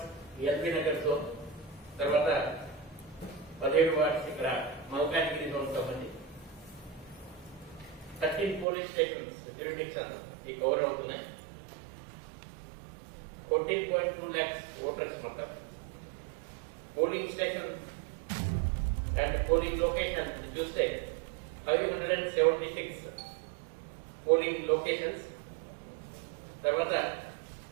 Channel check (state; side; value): drops out; left; at 8.7 s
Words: ఎల్బీ నగర్ తో, తర్వాత 17 వార్డ్స్ ఇక్కడ మల్కాజ్గిరి జోన్ సంబంధించి 13 పోలీస్ స్టేషన్స్ జ్యూరిడిక్షన్ ఈ కవర్ అవుతున్నాయి. 14.2 lakhs voters మొత్తం. Polling station and polling location చూస్తే 576 పోలింగ్ లొకేషన్స్, తర్వాత